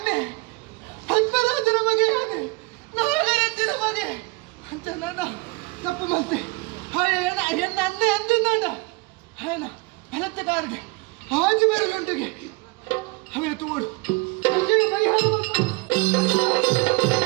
ಪದ್ಮರಾಜನ ಮಗೆ ಆನೆ ನಾಗರತ್ತಿನ ಮಗೆ ಅಂತ ನಾನು ತಪ್ಪು ಮತ್ತೆ ಎನ್ನ ಅಣ್ಣೆ ಅಂದಿದ್ದಾಂಡ ఆయన బలత్తకారుడి ఆజు బెరలుంటికి ಅವನ ತೋಡು ಪರಿಹಾರ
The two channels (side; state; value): left; quieter; 25.2 dB